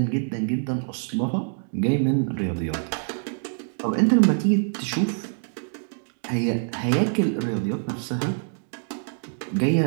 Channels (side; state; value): left; silent; digital silence